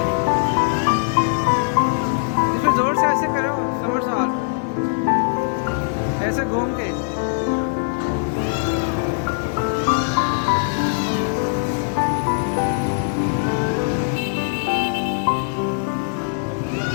इसमें जोर से ऐसे करो, समरसॉल्ट, ऐसे घूम के।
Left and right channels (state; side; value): silent; right; digital silence